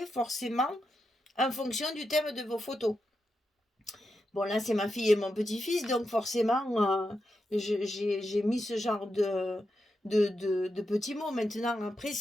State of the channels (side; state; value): both; normal; correlation 0.86